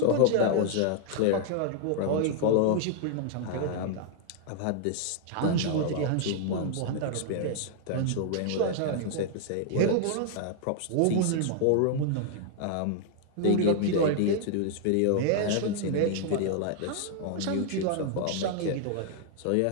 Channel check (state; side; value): different; both; correlation 0.00